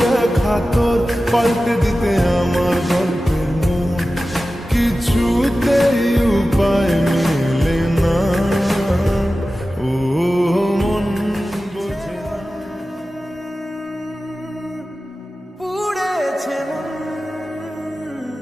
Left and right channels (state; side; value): normal; both; correlation 0.95